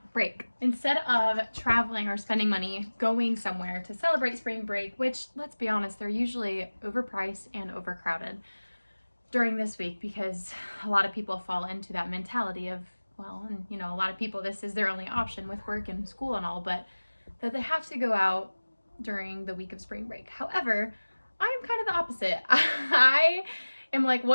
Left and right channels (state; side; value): inverted; both; correlation -1.00